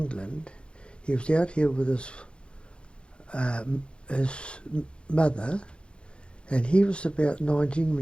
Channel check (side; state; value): right; late; 0.056 ms